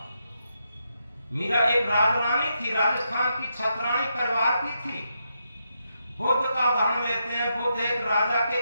मीरा एक राजरानी थी, राजस्थान की छत्राणी परिवार की थी। बुद्ध का उदाहरण लेते हैं, बुद्ध एक राजा के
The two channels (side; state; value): both; inverted; correlation -0.82